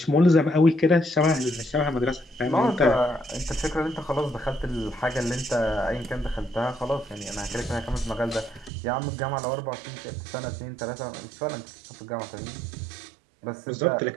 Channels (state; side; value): drops out; left; at 8.7 s